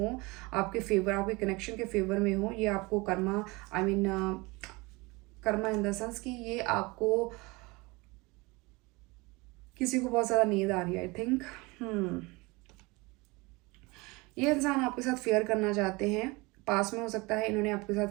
आपके फेवर, आपके कनेक्शन के फेवर में हो। ये आपको Karma, I mean Karma in the sense कि ये आपको, किसी को बहुत ज़्यादा नींद आ रही है आई थिंक। ये इंसान आपके साथ फेयर करना चाहते हैं, पास में हो सकता है इन्होंने आपके साथ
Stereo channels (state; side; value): quieter; left; 24.8 dB